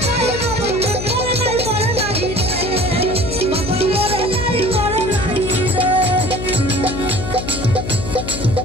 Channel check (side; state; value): left; noise; hum, 6 dB below the sound